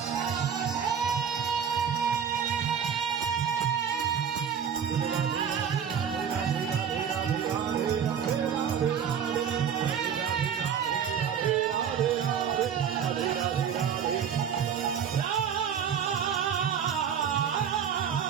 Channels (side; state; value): left; quieter; 7.9 dB